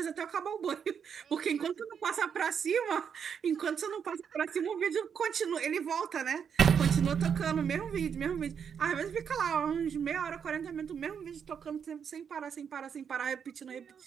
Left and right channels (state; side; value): quieter; left; 7.3 dB